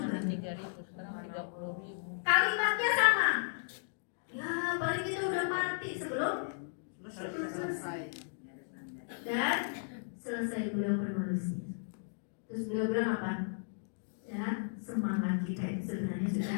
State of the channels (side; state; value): right; silent; digital silence